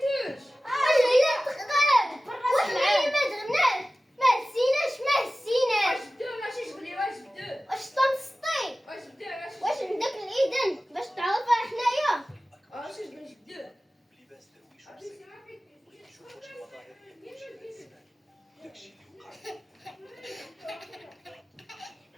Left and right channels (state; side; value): normal; both; correlation 0.96